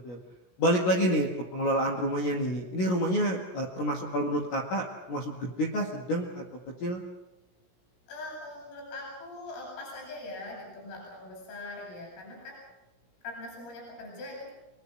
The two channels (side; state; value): right; late; 17 ms